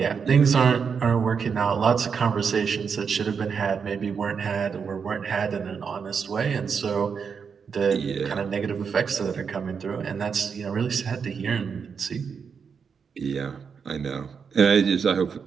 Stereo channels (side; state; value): left; quieter; 6.2 dB